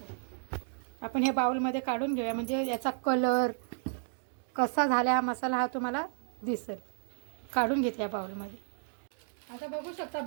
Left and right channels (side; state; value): left; silent; 56 dB below the other